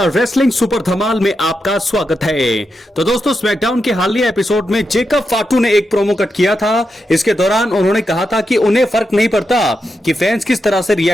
रेसलिंग सुपर धमाल में आपका स्वागत है। तो दोस्तों स्मैकडाउन के हालिया एपिसोड में जेकब फाटू ने एक प्रोमो कट किया था। इसके दौरान उन्होंने कहा था कि उन्हें फर्क नहीं पड़ता कि फैंस किस तरह से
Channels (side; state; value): both; normal; correlation 0.86